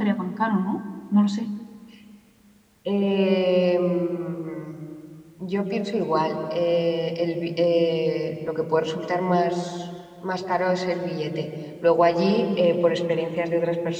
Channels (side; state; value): both; identical; correlation 1.00